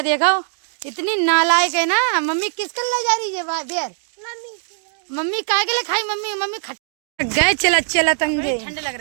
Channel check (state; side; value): silent; left; digital silence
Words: देखो इतनी नालायक है ना। मम्मी किसके ले जा रही है बेर? मम्मी काय के लिए खाई? मम्मी गए चला चला तंगे। ठंड लग